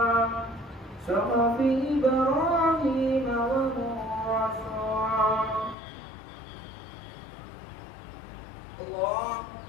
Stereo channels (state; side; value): drops out; right; at 5.8 s